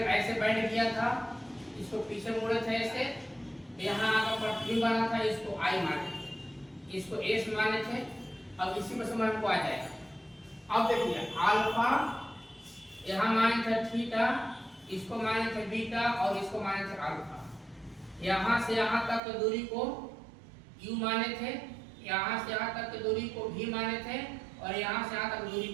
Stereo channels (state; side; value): drops out; left; at 19.2 s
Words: ऐसे बैठ गया था, इसको पीछे मोड़े थे ऐसे, यहाँ आकर पटरी बना था, इसको आई माने थे, इसको एस माने थे। अब इसी में समझ को आ जाएगा। अब देखिए अल्फा यहाँ माने थे थीटा, इसको माने थे बीटा और इसको माने थे अल्फा। यहाँ से यहाँ तक की दूरी को u माने थे, यहाँ से यहाँ तक की दूरी को v माने थे और यहाँ से यहाँ तक दूरी